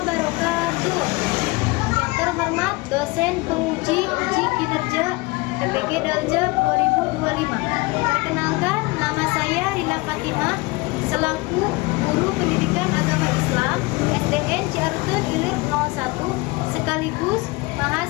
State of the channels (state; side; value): quieter; right; 24.0 dB